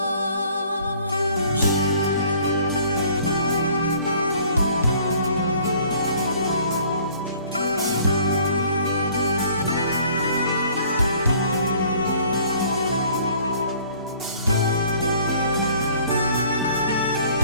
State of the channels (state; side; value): inverted; both; correlation -0.55